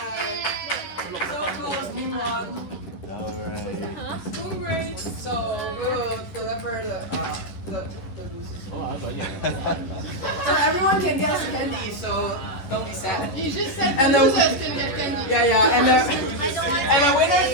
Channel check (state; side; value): late; right; 11 ms